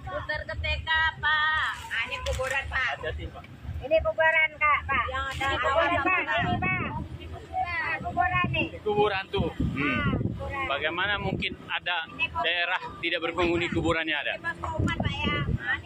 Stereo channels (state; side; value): identical; both; correlation 1.00